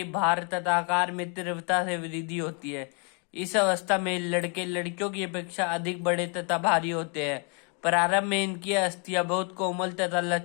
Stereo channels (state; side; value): quieter; right; 36.5 dB